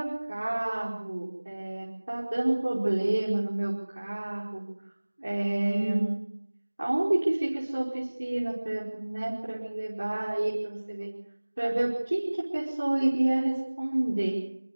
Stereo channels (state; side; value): inverted; both; correlation -1.00